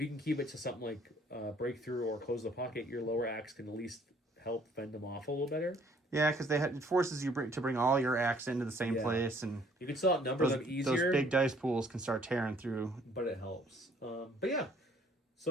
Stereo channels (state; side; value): normal; both; correlation 0.60